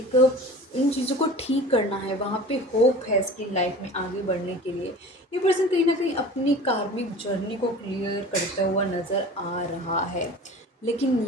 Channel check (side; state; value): both; normal; correlation 0.40